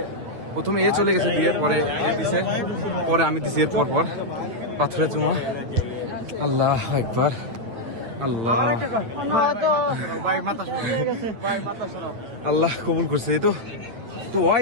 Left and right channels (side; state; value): left; late; 8.9 ms